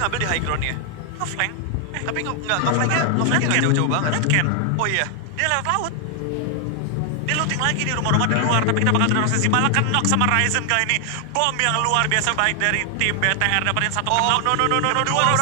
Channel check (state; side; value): different; both; correlation 0.00